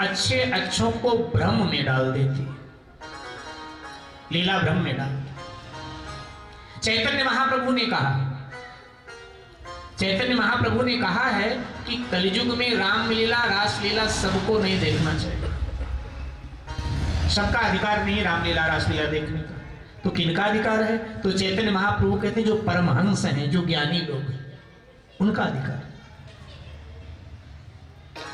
अच्छे अच्छों को भ्रम में डाल देती, लीला भ्रम में डाल। चैतन्य महाप्रभु ने कहा, चैतन्य महाप्रभु ने कहा है कि कलयुग में रामलीला रासलीला सबको नहीं देखना चाहिए। सबका अधिकार नहीं रामलीला रासलीला देखने का, तो किनका अधिकार है? तो चैतन्य महाप्रभु कहते हैं जो परमहंस हैं, जो ज्ञानी लोग हैं, उनका अधिकार।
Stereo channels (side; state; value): both; identical; correlation 1.00